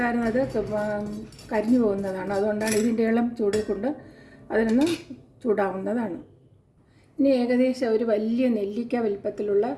കരിഞ്ഞു പോകുന്നതാണ്. അതുകൊണ്ടാണ് ഇതിൻ്റെ ഇളം ചൂടിൽ കൊണ്ട് അതിനൊന്ന് ചൂടാവുന്നതാണ്. ഇനി ഏകദേശം ഒരു വലിയ നെല്ലിക്ക വലിപ്പത്തിലുള്ള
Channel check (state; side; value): identical; both; correlation 1.00